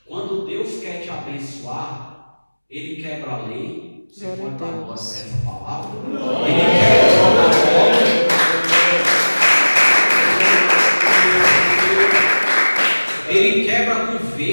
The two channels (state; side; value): inverted; both; correlation -1.00